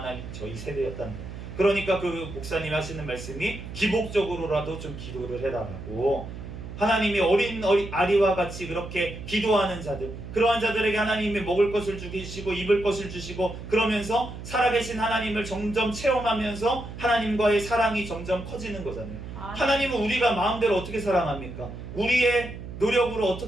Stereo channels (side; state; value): right; noise; hum, 10 dB below the sound